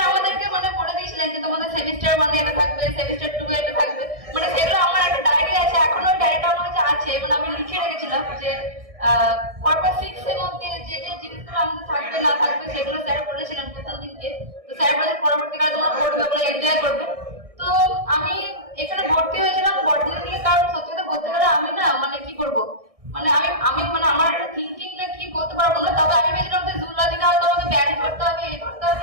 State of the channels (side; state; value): left; late; 1.6 ms